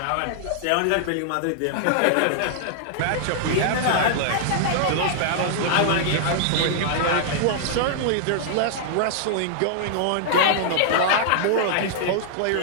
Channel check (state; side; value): different; both; correlation -0.01